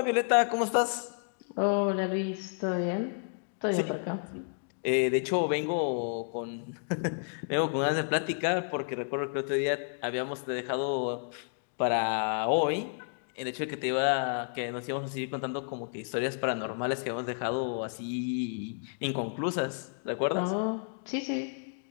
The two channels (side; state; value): right; silent; digital silence